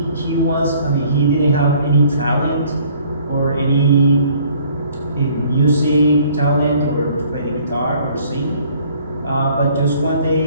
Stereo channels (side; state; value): both; inverted; correlation -0.58